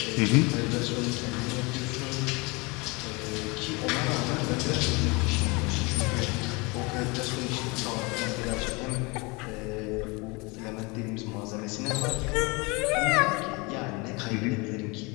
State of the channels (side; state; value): right; quieter; 27.2 dB